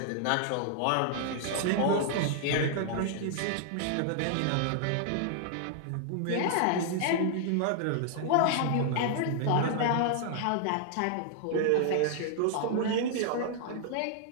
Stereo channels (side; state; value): both; different; correlation -0.01